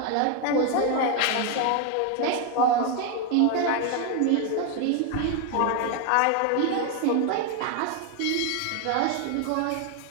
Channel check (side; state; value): both; different; correlation 0.01